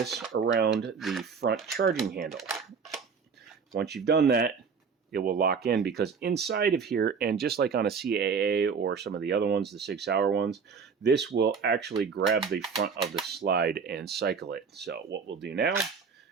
around the front charging handle. Once you've done that, it will lock in because inside of here, and just like on a CAA or some of the other ones, the Sig Sauer ones, this will actually grab the front of the slide and cycle it. So what we'll do now,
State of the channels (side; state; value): left; quieter; 5.8 dB